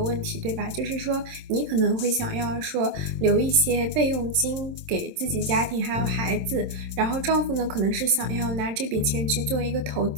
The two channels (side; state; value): left; late; 27 ms